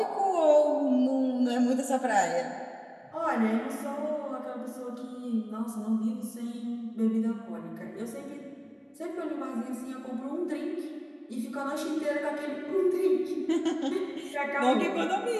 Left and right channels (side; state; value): both; identical; correlation 1.00